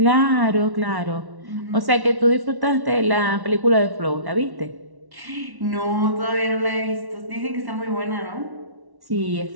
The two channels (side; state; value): left; late; 1.1 ms